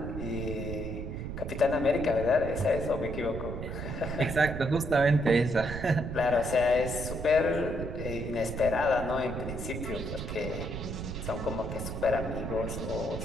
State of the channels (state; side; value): noise; right; rumble, 6 dB below the sound